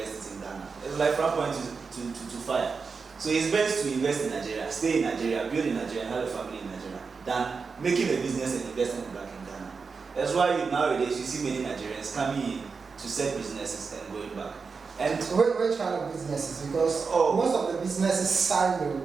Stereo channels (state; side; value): quieter; left; 5.0 dB